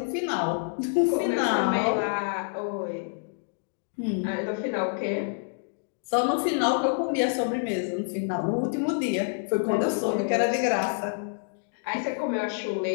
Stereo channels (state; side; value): silent; right; digital silence